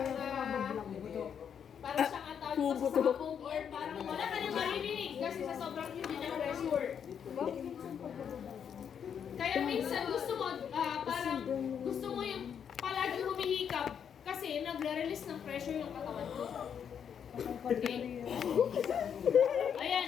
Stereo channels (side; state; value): right; quieter; 7.9 dB